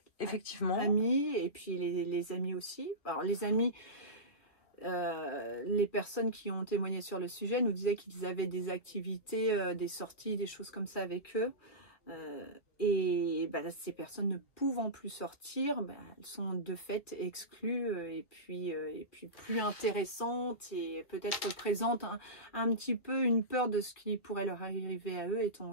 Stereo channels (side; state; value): right; late; 2.2 ms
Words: Effectivement. Amis, et puis les amis aussi. Alors les amis, les personnes qui ont témoigné sur le sujet nous disaient qu'ils avaient des activités, des sorties, des choses comme ça avec eux. Ces personnes ne pouvant plus sortir, elles sont de fait exclues et puis plus intéressantes et peut-être représentent un petit peu une peur de ce qui pourrait leur arriver à eux étant